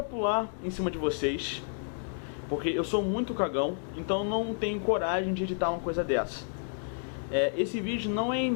pular em cima de vocês, porque eu sou muito cagão, então não tenho coragem de editar uma coisa dessa. Esse vídeo não é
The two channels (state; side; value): silent; right; 57 dB below the other